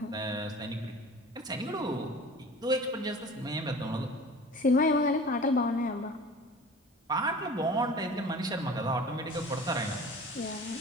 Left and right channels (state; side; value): normal; both; correlation 0.41